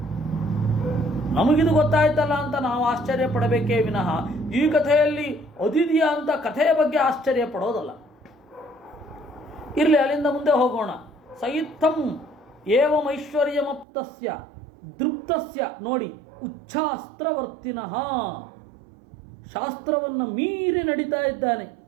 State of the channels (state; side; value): drops out; left; at 13.9 s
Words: ನಮಗಿದು ಗೊತ್ತಾಯ್ತಲ್ಲ ಅಂತ ನಾವು ಆಶ್ಚರ್ಯ ಪಡಬೇಕೇ ವಿನಃ ಈ ಕಥೆಯಲ್ಲಿ ಅದಿದೆಯಾ ಅಂತ ಕಥೆಯ ಬಗ್ಗೆ ಆಶ್ಚರ್ಯ ಪಡೋದಲ್ಲ. ಇರಲಿ, ಅಲ್ಲಿಂದ ಮುಂದೆ ಹೋಗೋಣ. ಸಯಿತ್ಥಂ ಏವಮೈಶ್ವರ್ಯಮಪ್ತಸ್ಯ ದೃಪ್ತಸ್ಯ. ನೋಡಿ, ಉಚ್ಛಾಸ್ತ್ರವರ್ತಿನಃ, ಶಾಸ್ತ್ರವನ್ನು ಮೀರಿ ನಡೀತಾ ಇದ್ದಾನೆ.